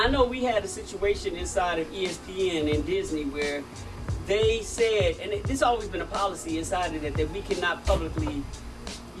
know we had a situation inside of ESPN and Disney where they said, and this has always been a policy inside of that we cannot publicly,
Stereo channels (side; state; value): both; identical; correlation 1.00